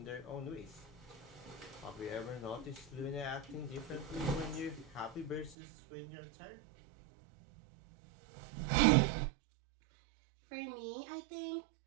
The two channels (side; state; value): left; drops out; at 5.6 s